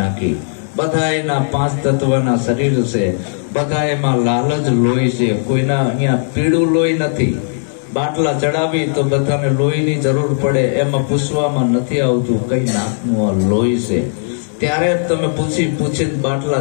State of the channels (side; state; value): right; silent; digital silence